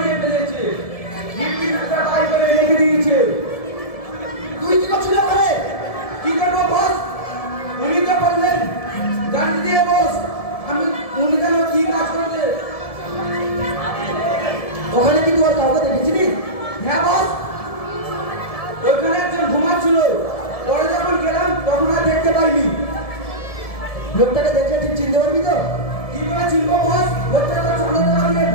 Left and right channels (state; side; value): late; right; 1.7 ms